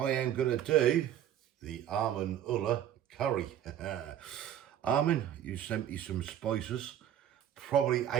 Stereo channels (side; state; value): left; quieter; 10.7 dB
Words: am going to do the Amin curry. Amin, you sent me some spices probably